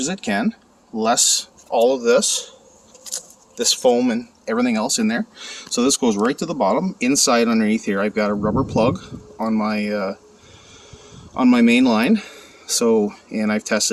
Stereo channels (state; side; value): identical; both; correlation 1.00